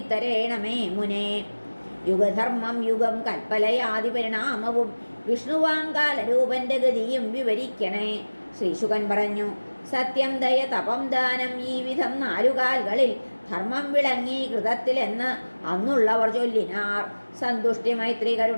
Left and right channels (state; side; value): inverted; both; correlation -1.00